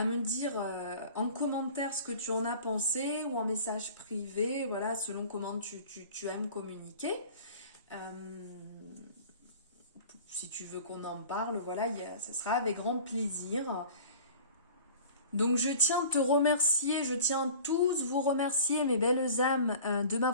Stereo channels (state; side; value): inverted; both; correlation -0.43